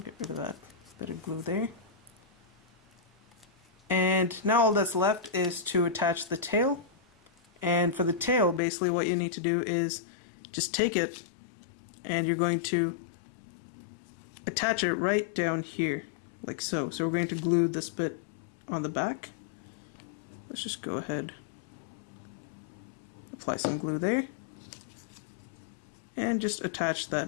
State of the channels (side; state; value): right; drops out; at 8.6 s